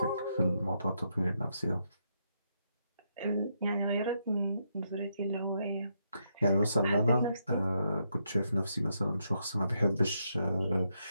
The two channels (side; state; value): both; inverted; correlation -0.79